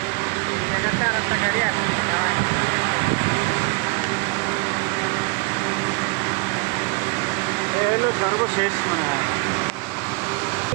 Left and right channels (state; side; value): quieter; left; 29.8 dB